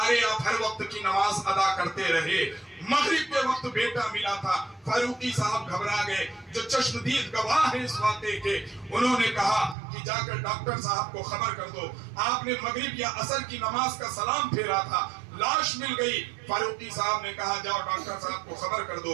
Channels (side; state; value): left; drops out; at 9.8 s